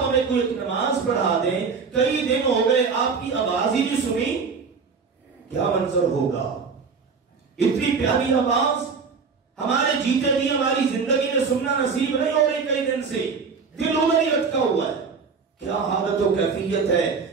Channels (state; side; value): quieter; left; 5.3 dB